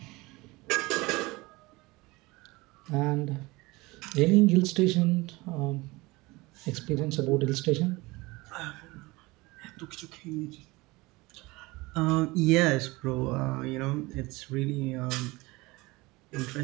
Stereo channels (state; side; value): quieter; left; 22.4 dB